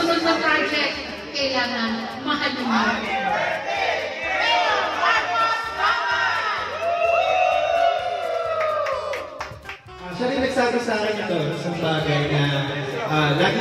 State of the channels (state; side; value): identical; both; correlation 1.00